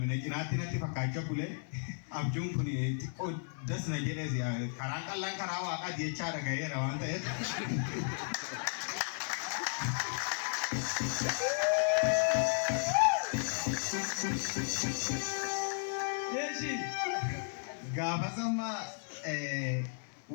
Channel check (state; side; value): silent; right; 55 dB below the other